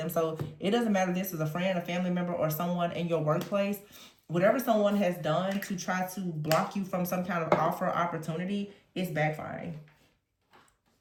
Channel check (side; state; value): both; identical; correlation 1.00